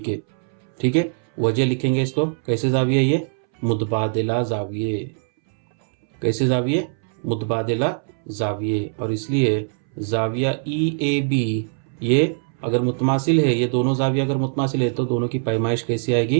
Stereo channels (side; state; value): left; silent; 64 dB below the other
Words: ठीक है, वजह लिखेंगे इसको कैसे, जाविया ये मुतबादिला जाविये, कैसे जाविये, मुतबादिला जाविये। और इसलिए जाविया ई ए बी ये अगर मुतमासिल है, ये दोनों जाविया अगर मुतमासिल है तो दोनों की पैमाइश कैसी